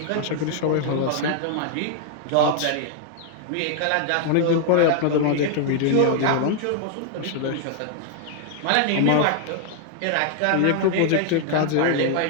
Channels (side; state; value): both; different; correlation 0.00